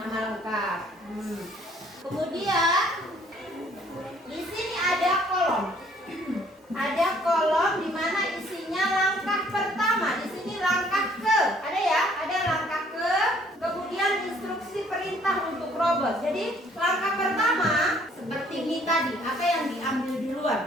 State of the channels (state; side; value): normal; both; correlation 0.61